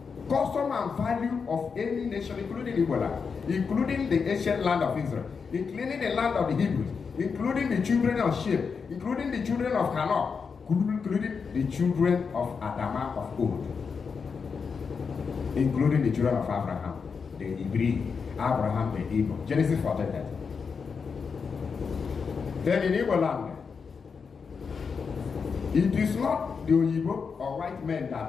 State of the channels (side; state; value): right; quieter; 5.6 dB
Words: custom and value of any nation, including Ebola, including the ancient land of Israel, including the land of the Hebrews, including the children of Shem, including the children of Hanoch, including the children of Adama of old, including the children of Abraham, the Hebrew, Abraham, the Hebrew. Genesis 14:30. Then in Igbo land, it is not the Igbo or white men